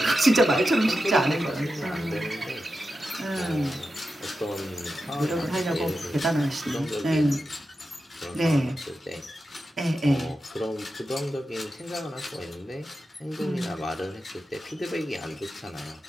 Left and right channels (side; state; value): both; normal; correlation 0.90